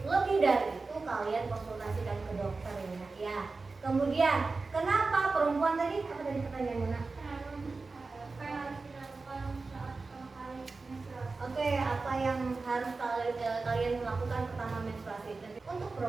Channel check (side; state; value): left; quieter; 3.9 dB